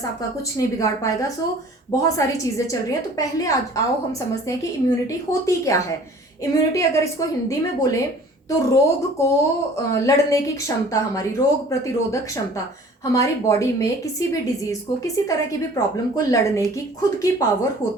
आपका कुछ नहीं बिगाड़ पाएगा। सो बहुत सारी चीज़ें चल रही हैं। तो पहले आज आओ हम समझते हैं कि इम्यूनिटी होती क्या है। इम्यूनिटी अगर इसको हिंदी में बोले तो रोग को लड़ने की क्षमता, हमारी रोग प्रतिरोधक क्षमता, हमारी बॉडी में किसी भी डिजीज को, किसी तरह की भी प्रॉब्लम को लड़ने की खुद की पावर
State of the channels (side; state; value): both; normal; correlation 0.49